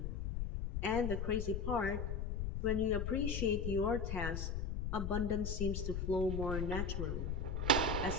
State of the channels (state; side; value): noise; left; rumble, 2 dB below the sound